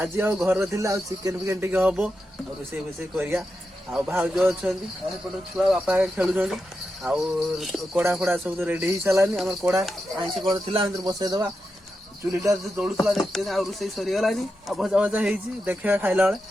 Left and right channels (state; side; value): normal; both; correlation 0.88